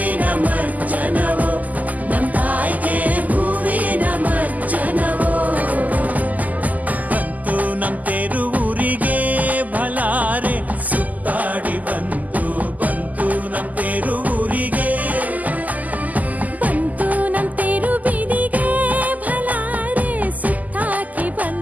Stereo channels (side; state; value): left; late; 0.079 ms